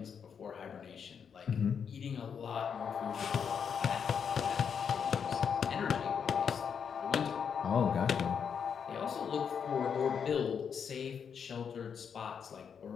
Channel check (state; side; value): quieter; right; 7.1 dB